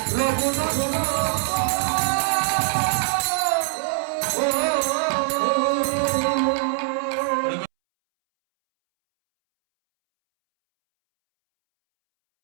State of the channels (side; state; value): left; silent; 64 dB below the other